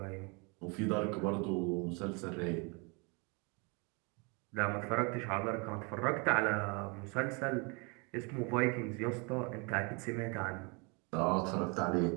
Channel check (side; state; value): left; quieter; 31.2 dB